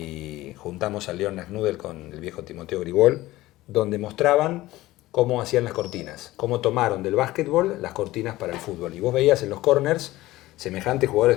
juntamos a Leon Nasnudel con el viejo Timoteo Grigol, donde mostraban cómo hacían las cortinas, cómo tomaron del básquetbol las cortinas para el fútbol. Y vos veías en los corners semejantes jugadores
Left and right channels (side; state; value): right; quieter; 17.3 dB